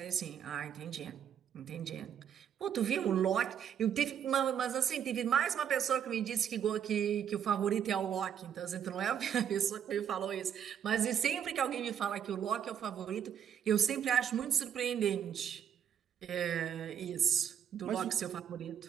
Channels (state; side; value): quieter; left; 8.8 dB